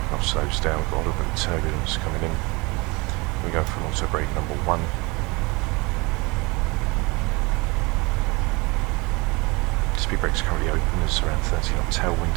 aircraft slows down, we've got a little bit of turbulence coming in. We go for auto brake number 1. Speed brakes currently open, there's around 30 knot tailwind.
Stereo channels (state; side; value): quieter; left; 25.8 dB